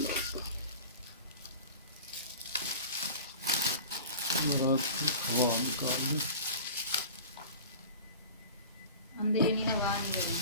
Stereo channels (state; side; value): inverted; both; correlation -0.37